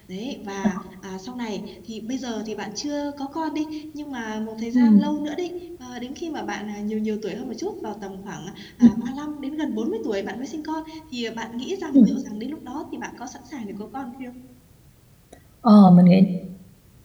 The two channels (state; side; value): identical; both; correlation 1.00